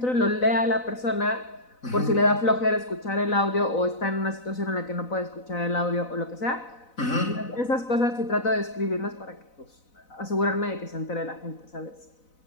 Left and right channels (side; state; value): right; late; 4.0 ms